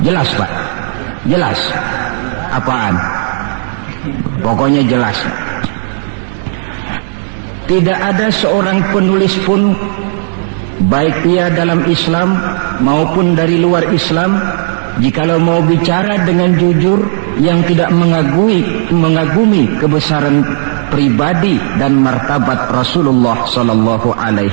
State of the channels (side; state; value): left; silent; digital silence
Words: Jelas Pak? Jelas? Apaan? Pokoknya jelas. Tidak ada seorang penulis pun, baik ia dalam Islam maupun dari luar Islam, jikalau mau bicara dengan jujur yang tidak mengagumi kebesaran pribadi dan martabat Rasulullah sallallahu